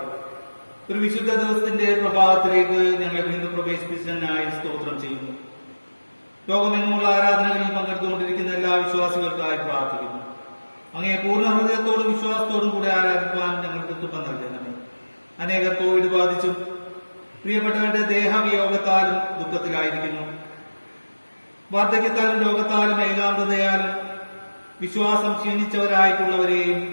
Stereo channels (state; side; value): inverted; both; correlation -1.00